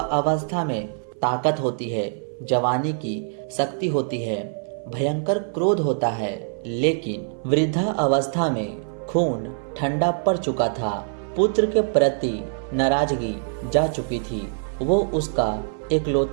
में ताकत होती है, जवानी की शक्ति होती है, भयंकर क्रोध होता है। लेकिन वृद्धा अवस्था में खून ठंडा पड़ चुका था। पुत्र के प्रति नाराजगी जा चुकी थी। वो उसका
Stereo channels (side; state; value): left; silent; 58 dB below the other